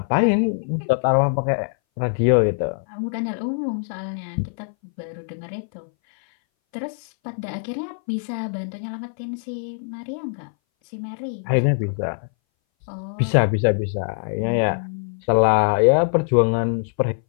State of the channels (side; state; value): right; silent; 60 dB below the other